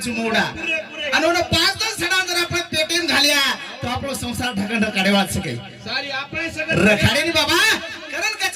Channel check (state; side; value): identical; both; correlation 1.00